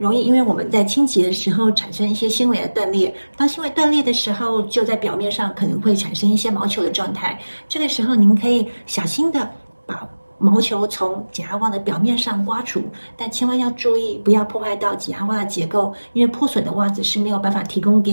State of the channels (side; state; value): both; inverted; correlation -1.00